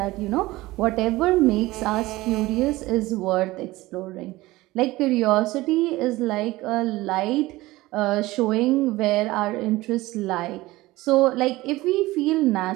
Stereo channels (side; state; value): left; quieter; 18.9 dB